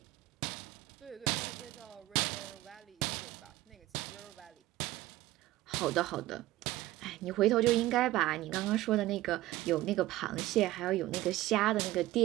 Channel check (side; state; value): left; quieter; 16.7 dB